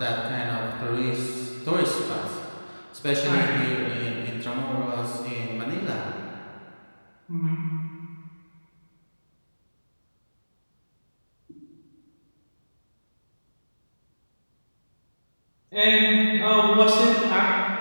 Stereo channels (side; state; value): both; inverted; correlation -1.00